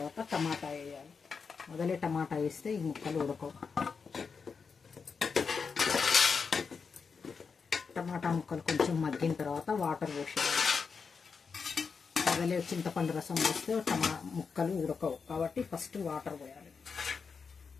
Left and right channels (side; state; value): right; quieter; 5.4 dB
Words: టమాటా వేయాలి. మొదలే టమాటా వేస్తే ఈ ముక్కలు ఉడకవు. టమాటా ముక్కలు కొంచెం మగ్గిన తర్వాత వాటర్ పోసేయాలి. మొదలే చింతపండు రసం వేస్తే ముక్కలు ఉడకవు కాబట్టి ఫస్ట్ వాటర్ పోయాలి.